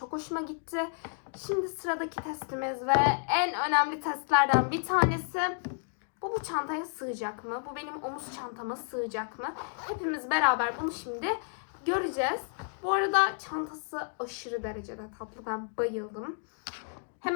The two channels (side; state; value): right; silent; 57 dB below the other